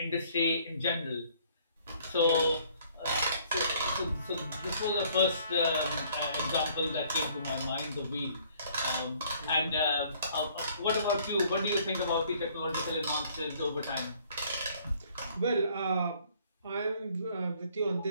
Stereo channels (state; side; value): inverted; both; correlation -0.60